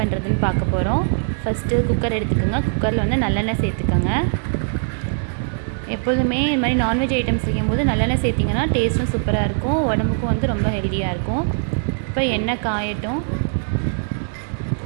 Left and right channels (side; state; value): left; silent; 62 dB below the other